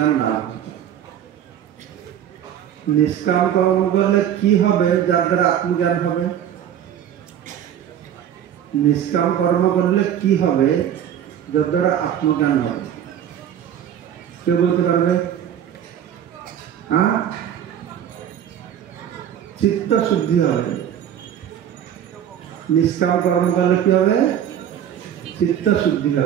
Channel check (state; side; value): quieter; left; 9.9 dB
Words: লাভ হবে। নিষ্কাম কর্ম করলে কি হবে যার দ্বারা আত্মজ্ঞান হবে? নিষ্কাম কর্ম করলে কি হবে যার দ্বারা আত্মজ্ঞান হবে? কেউ বলতে পারবে? হ্যাঁ, চিত্ত শুদ্ধি হবে। নিষ্কাম কর্ম করলে কি হবে? চিত্ত শুদ্ধি